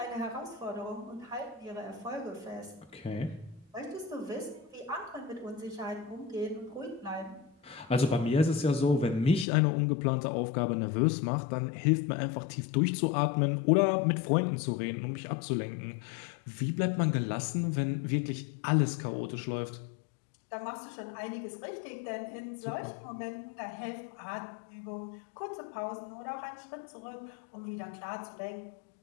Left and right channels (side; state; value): right; drops out; at 9.5 s